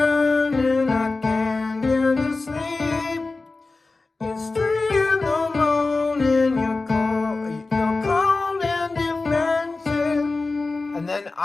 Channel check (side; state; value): right; quieter; 3.6 dB